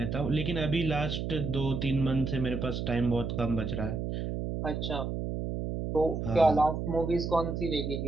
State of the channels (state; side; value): noise; right; hum, 3 dB below the sound